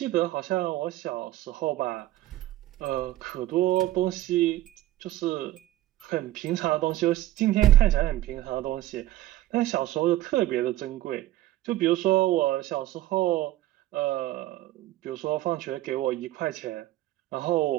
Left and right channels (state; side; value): quieter; left; 15.2 dB